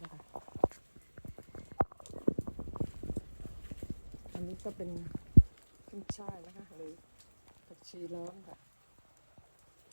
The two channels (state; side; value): inverted; both; correlation -1.00